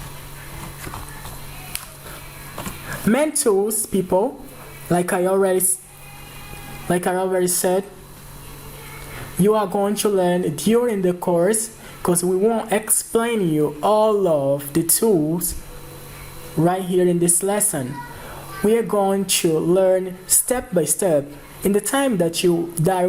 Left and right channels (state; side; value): identical; both; correlation 1.00